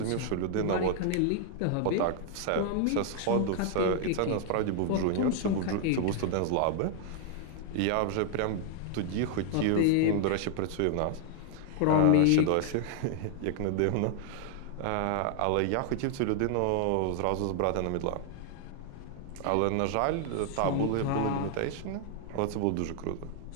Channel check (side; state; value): both; different; correlation 0.00